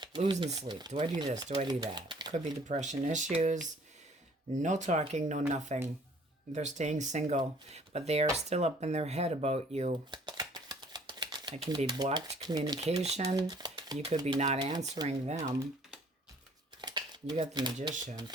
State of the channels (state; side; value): normal; both; correlation 0.57